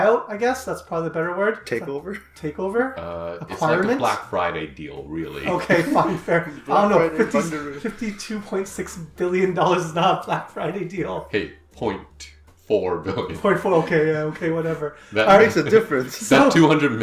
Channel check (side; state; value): both; identical; correlation 1.00